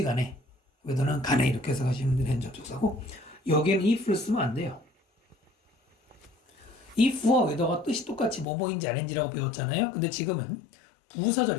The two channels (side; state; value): right; drops out; at 8.5 s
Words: 간에 whether는 간에 이렇게 해서 가시면 되는 접속사고 여기에는 if를 쓰면 안 돼요. if와 whether가 뜻이 똑같이 뭐뭐인지 아닌지라고 배웠잖아요. 근데 지금은